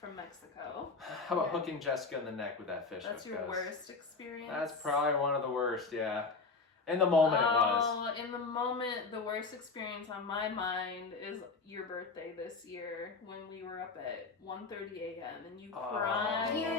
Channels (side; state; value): right; quieter; 4.2 dB